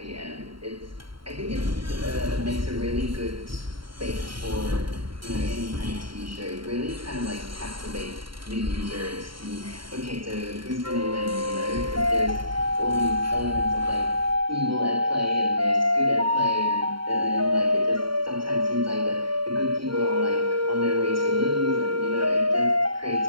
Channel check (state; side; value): late; left; 0.73 ms